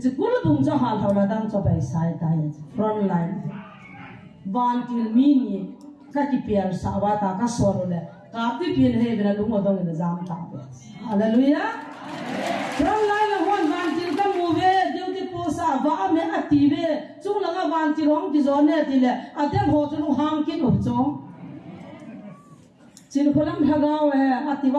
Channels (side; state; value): both; identical; correlation 1.00